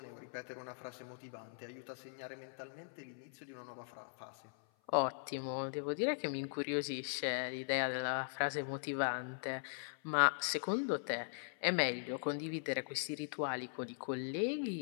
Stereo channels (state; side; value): silent; right; 51 dB below the other